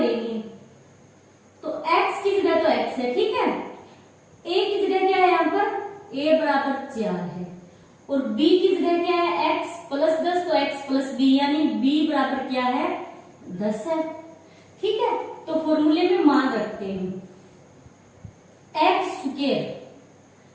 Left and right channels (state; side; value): identical; both; correlation 1.00